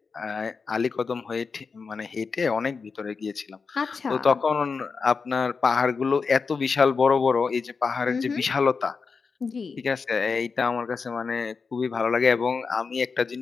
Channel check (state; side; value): quieter; right; 5.0 dB